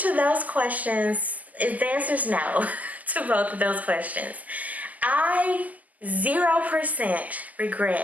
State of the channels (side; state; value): left; late; 0.078 ms